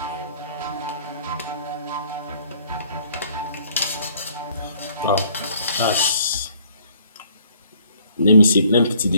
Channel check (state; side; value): inverted; both; correlation -0.60